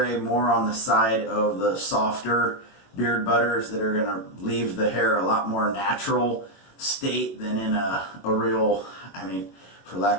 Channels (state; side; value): late; right; 21 ms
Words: more on the side of the softer beard butters that are going to leave the hair a lot more natural state than in a real, I mean, for